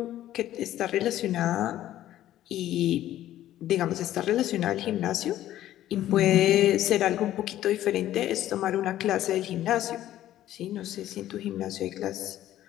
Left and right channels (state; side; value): quieter; right; 13.1 dB